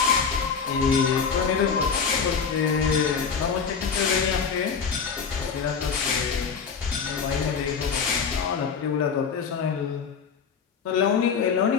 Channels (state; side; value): quieter; right; 6.2 dB